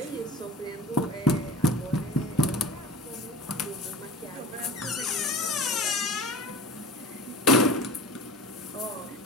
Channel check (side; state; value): both; normal; correlation 0.36